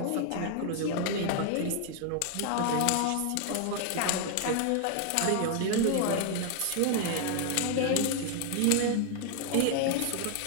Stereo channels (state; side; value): different; both; correlation 0.00